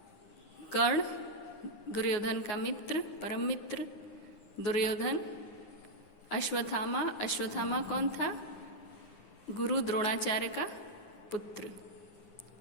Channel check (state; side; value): late; right; 9.6 ms